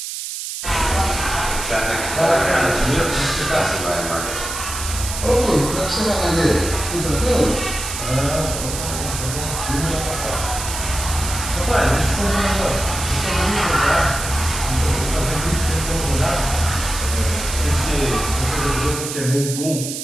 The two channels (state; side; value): noise; right; hiss, 6 dB below the sound